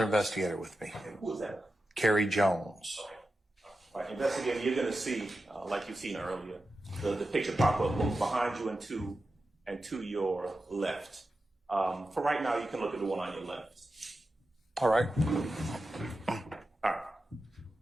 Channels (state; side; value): normal; both; correlation 0.91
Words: investigator with me, And who is that? Carrie Jones. Okay. All right, investigator, you're going to see, like you've seen earlier, the picture pop up both behind you and to your left. For right now, you can look at the one on your left. All right. All right.